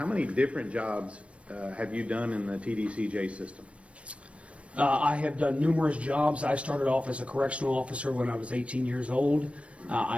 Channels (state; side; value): late; left; 0.062 ms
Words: many different jobs have you done in the TDCJ system? I have done numerous jobs. I started off as a correctional officer when I was 18 years old.